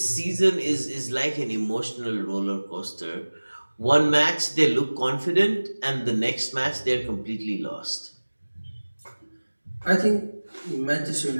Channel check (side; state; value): both; inverted; correlation -1.00